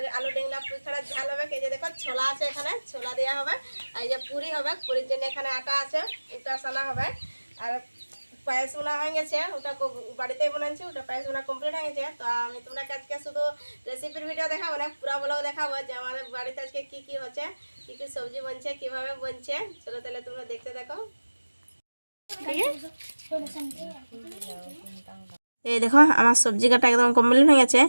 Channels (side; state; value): both; inverted; correlation -1.00